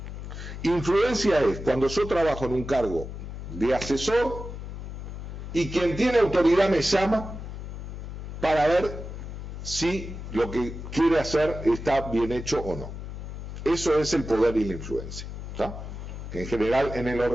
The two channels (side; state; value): left; noise; hum, 9 dB below the sound